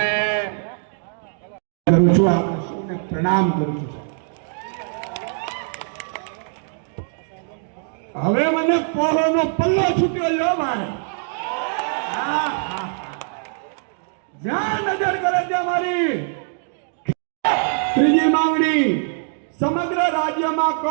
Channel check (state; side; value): silent; left; digital silence